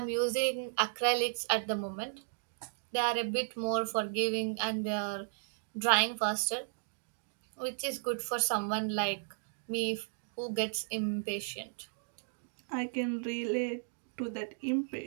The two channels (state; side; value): silent; left; digital silence